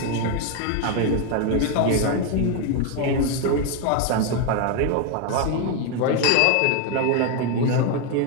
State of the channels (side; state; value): both; different; correlation 0.01